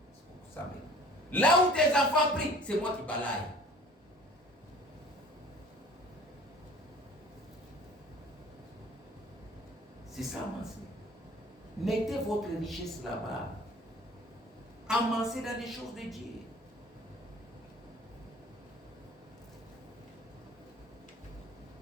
Là où tes enfants prient, c'est moi qui balaye. C'est ça, amassez. Mettez votre richesse là-bas. Amassez dans les choses de Dieu.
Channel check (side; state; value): both; normal; correlation 0.48